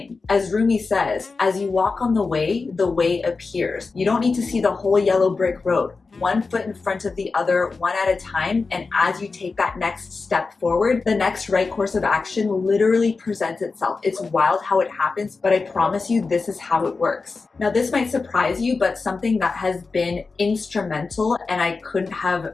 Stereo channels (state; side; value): quieter; right; 4.2 dB